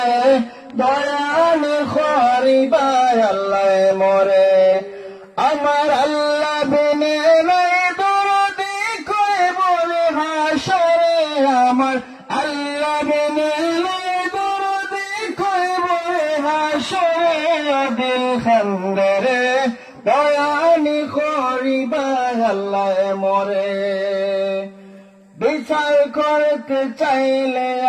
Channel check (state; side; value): identical; both; correlation 1.00